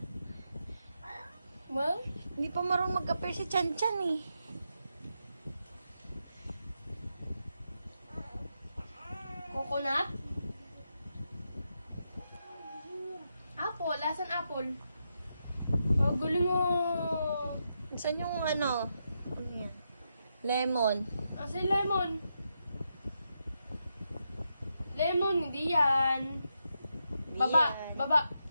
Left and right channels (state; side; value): inverted; both; correlation -0.84